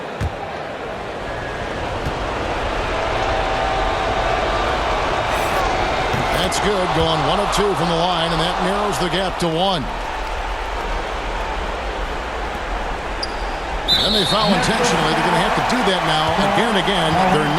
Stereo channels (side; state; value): both; identical; correlation 1.00